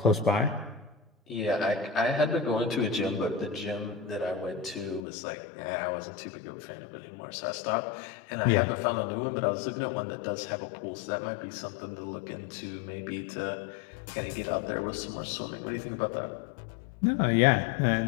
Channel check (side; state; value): right; drops out; at 5.0 s